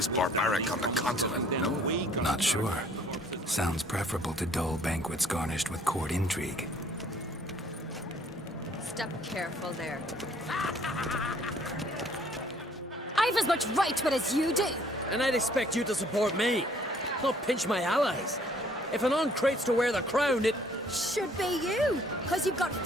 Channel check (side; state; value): both; normal; correlation 0.60